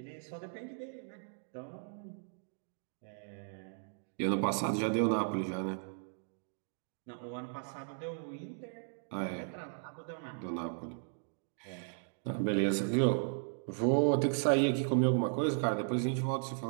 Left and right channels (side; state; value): left; silent; digital silence